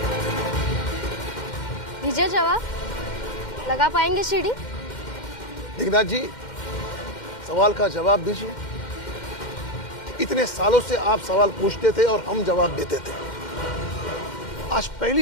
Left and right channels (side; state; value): right; late; 2.1 ms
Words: दीजिए जवाब, लगा पाएंगे सीढ़ी? दिग्नाथ जी, सवाल का जवाब दीजिए। इतने सालों से आप सवाल पूछते थे और हम जवाब देते थे। आज